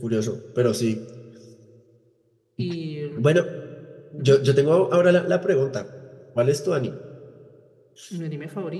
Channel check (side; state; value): both; identical; correlation 1.00